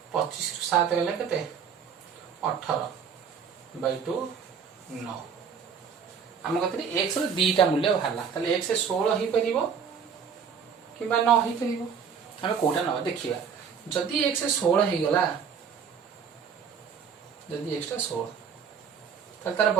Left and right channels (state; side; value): quieter; left; 6.8 dB